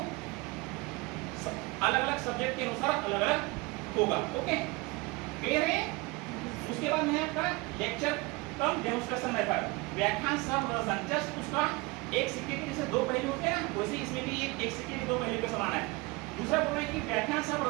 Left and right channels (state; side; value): quieter; left; 24.3 dB